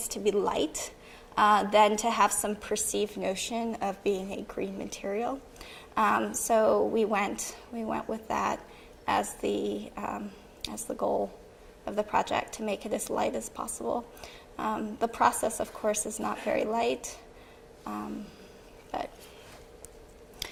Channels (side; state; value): both; identical; correlation 1.00